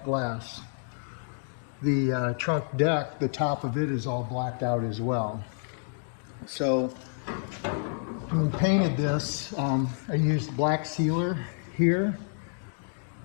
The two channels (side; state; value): right; silent; digital silence